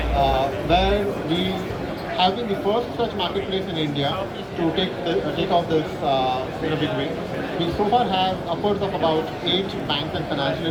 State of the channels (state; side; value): identical; both; correlation 1.00